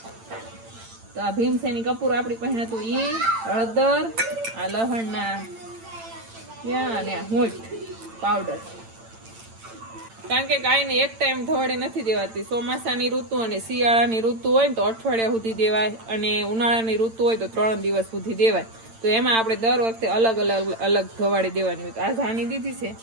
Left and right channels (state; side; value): late; left; 8.9 ms